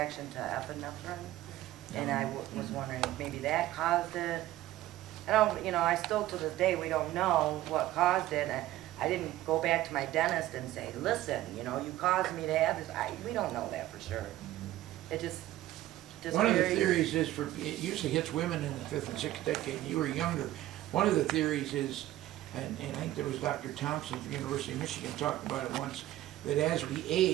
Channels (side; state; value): left; quieter; 15.0 dB